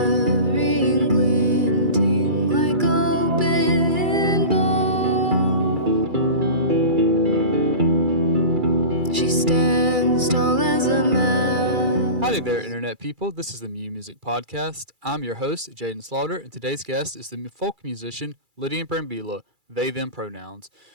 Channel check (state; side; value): late; left; 2.3 ms